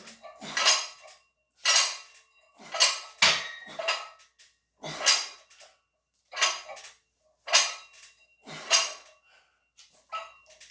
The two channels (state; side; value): identical; both; correlation 1.00